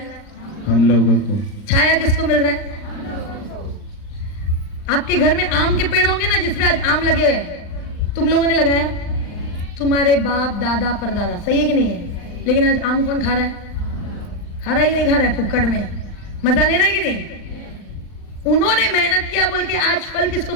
हम लोगों को। छाया किसको मिल रहा है? आपके घर में आम के पेड़ होंगे ना, जिसमें आज आम लगे हुए, तुम लोगों ने लगाया, तुम्हारे बाप दादा परदादा, सही है कि नहीं है? लेकिन आज आम कौन खा रहा है? खा रहा है कि नहीं खा रहा है? फुक्कड़ में मजा ले रहा है कि नहीं? उन्होंने मेहनत किया बोल के आज फल किसको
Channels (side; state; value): right; late; 39 ms